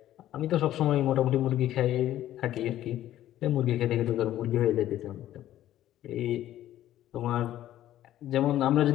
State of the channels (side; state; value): right; quieter; 13.1 dB